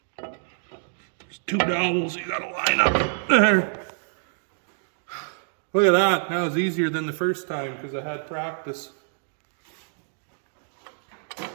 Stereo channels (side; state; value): left; silent; digital silence